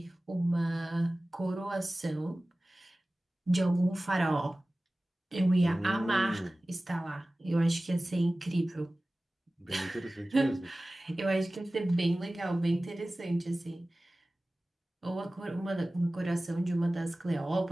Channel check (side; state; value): both; normal; correlation 0.97